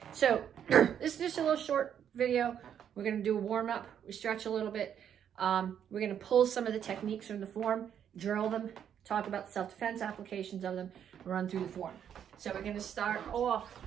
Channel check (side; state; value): left; quieter; 9.0 dB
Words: So this is just a little short video. We're gonna do a warm-up. We stretch a little bit. We're gonna pull some of the techniques from the form, drill them, talk about the self-defense applications of them, run through the form. So we're gonna start off